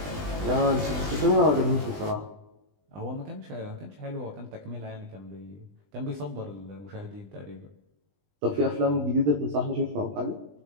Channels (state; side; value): late; left; 20 ms